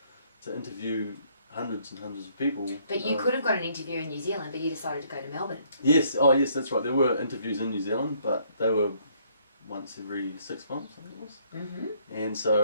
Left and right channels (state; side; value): inverted; both; correlation -0.66